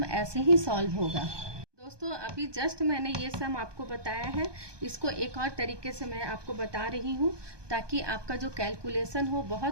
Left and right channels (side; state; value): left; late; 1.2 ms